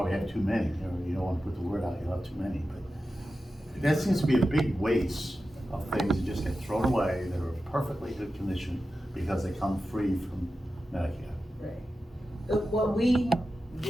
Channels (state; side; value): normal; both; correlation 0.92